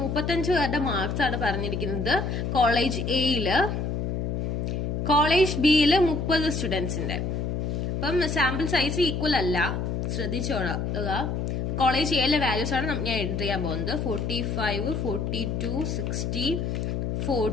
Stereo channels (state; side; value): noise; left; hum, 1 dB below the sound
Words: 35 പേരുടെ മാർക്സ് ആണ് പറഞ്ഞിരിക്കുന്നത് കോളേജ് എയില്. കോളേജ് ബിയില് 30 സ്റ്റുഡൻസിന്റെ. അപ്പം സാമ്പിൾ സൈസ് ഈക്വൽ അല്ല, ശ്രദ്ധിച്ചോളുക. കോളേജ് എയിലെ വാല്യൂസ് ആണ് ഞാൻ എൻട്രി ചെയ്യാൻ പോകുന്നത്. 45, 42, 60,